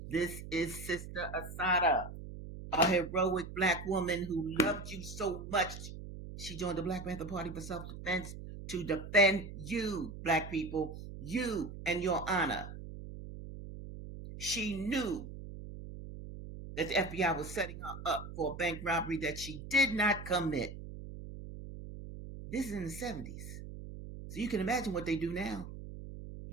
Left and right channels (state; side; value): noise; right; hum, 11 dB below the sound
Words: This is Sister Assata, a heroic black woman who loved you so much. She joined the Black Panther Party for self-defense to defend you, black people, you and your honor. She knew that the FBI was setting her up for a bank robbery that she did not commit. This is in the 70s. So you can imagine what they do now.